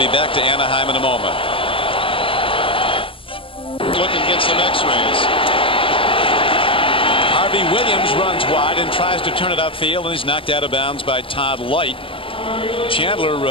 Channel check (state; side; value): late; right; 0.26 ms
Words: back to Anaheim in a moment. Looking at some x-rays. Harvey Williams runs wide and tries to turn it upfield, and he's knocked out of bounds by Todd Light.